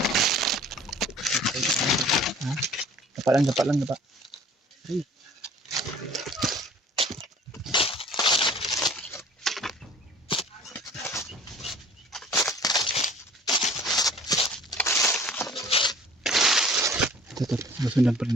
Dapa lang. Ay. Ito, susundan pa rin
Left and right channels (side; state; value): both; normal; correlation 0.49